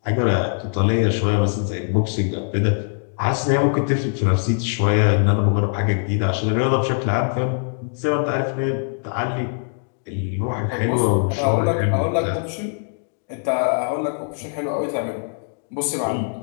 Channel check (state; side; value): silent; right; 64 dB below the other